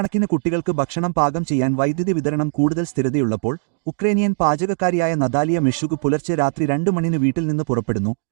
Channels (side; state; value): left; silent; digital silence